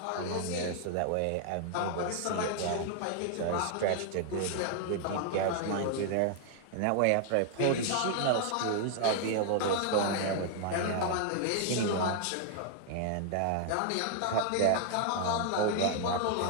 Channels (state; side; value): different; both; correlation 0.00